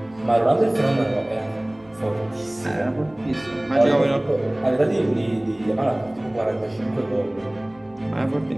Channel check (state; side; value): noise; right; rumble, 30 dB below the sound